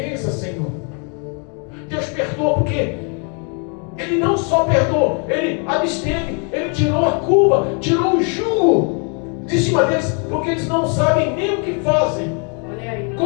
Senhor. Deus perdoa porque Ele não só perdoou, Ele absteve, Ele tirou a culpa, tirou o jugo de cima deles, porque eles não sabem nem o que fazem. Olha aí.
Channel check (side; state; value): right; quieter; 38.6 dB